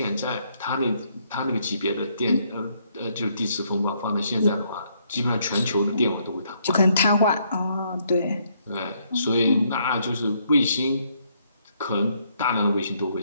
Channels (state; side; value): inverted; both; correlation -0.71